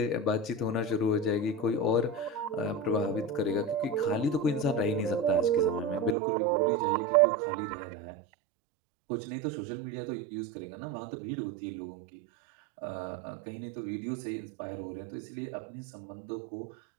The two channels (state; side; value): drops out; left; at 6.2 s